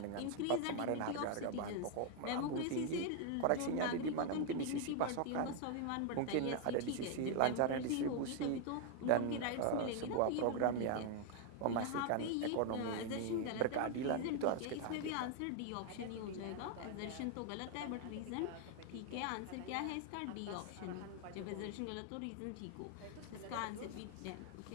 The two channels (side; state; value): both; different; correlation 0.00